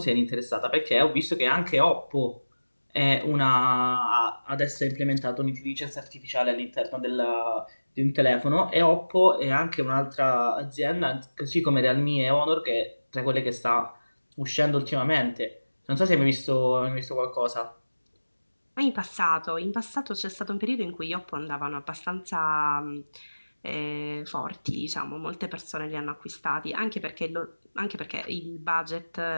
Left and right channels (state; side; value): inverted; both; correlation -1.00